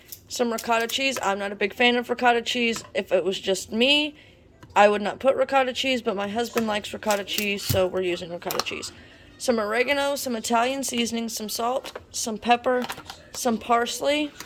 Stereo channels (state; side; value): identical; both; correlation 1.00